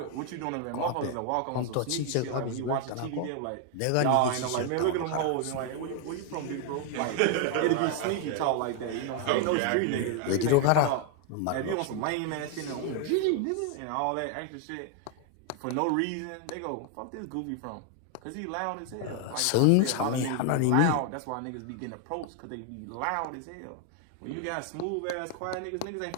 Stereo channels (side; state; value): both; different; correlation 0.00